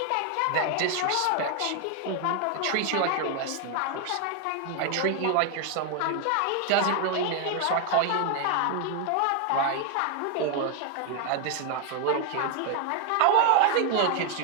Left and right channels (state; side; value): different; both; correlation 0.01